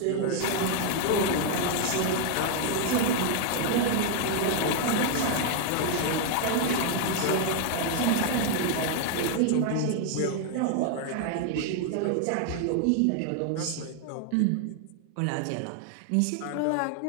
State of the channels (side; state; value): both; different; correlation 0.00